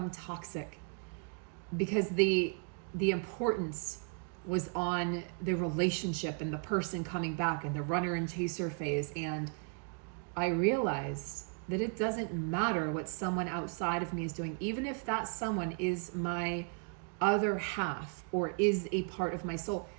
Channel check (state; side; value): quieter; left; 37.9 dB